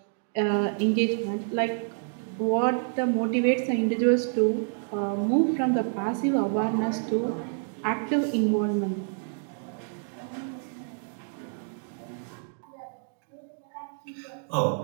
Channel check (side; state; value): left; silent; 59 dB below the other